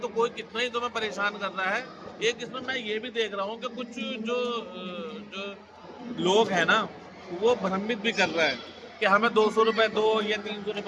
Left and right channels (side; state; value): both; identical; correlation 1.00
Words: कोई कितना ही तुम्हें परेशान कर रहा है। एक इसमें मैं ये भी देख रहा हूँ कि कुछ जो लोग हैं ना, वो भ्रमित भी कर रहे हैं कि हमें 200 रुपये दो या 300